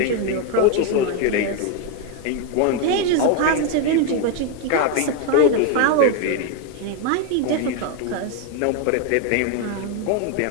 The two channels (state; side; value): different; both; correlation 0.01